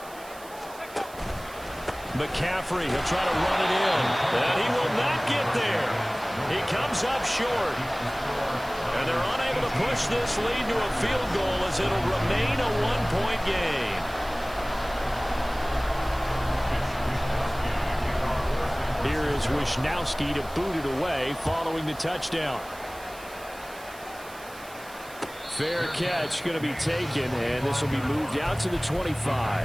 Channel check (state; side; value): noise; right; hiss, 19 dB below the sound